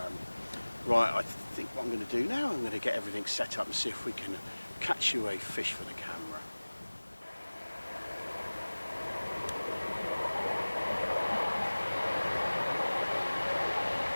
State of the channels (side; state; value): both; inverted; correlation -1.00